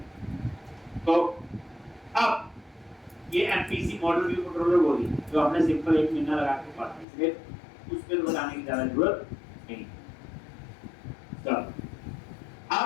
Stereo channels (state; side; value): drops out; right; at 7.1 s